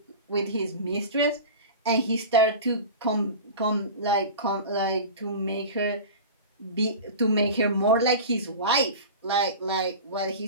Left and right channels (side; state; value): both; inverted; correlation -0.32